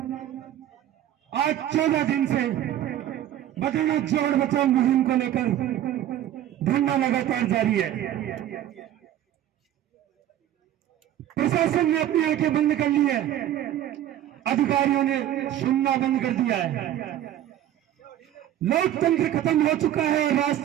आज 14 दिन से बदरना जोड़ बचाओ मुहिम को लेकर धरना लगातार जारी है। प्रशासन ने अपनी आंखें बंद कर ली है, अधिकारियों ने सुनना बंद कर दिया है। लोकतंत्र खत्म हो चुका है,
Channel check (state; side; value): quieter; left; 11.9 dB